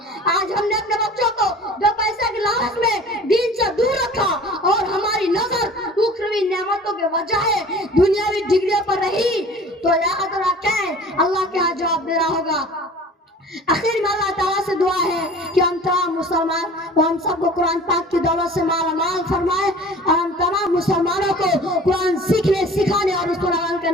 آج ہم نے اپنے بچوں کو دو پیسے کی لالچ میں دین سے دور رکھا اور ہماری نظر اخروی نعمتوں کے بجائے دنیاوی ڈگریوں پر رہی، تو یاد رکھیں اللہ کے ہاں جواب دینا ہوگا۔ آخر میں اللہ تعالیٰ سے دعا ہے کہ ہم تمام مسلمان ہم سب کو قرآن پاک کی دولت سے مالا مال فرمائے، اور ہم تمام مسلمانوں کو قرآن سیکھنے، سکھانے اور اس پر عمل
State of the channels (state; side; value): normal; both; correlation 0.44